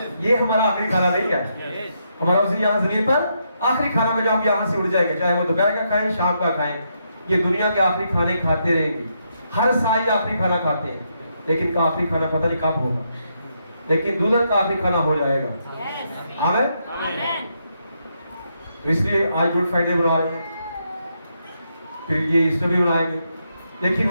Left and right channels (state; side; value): inverted; both; correlation -0.79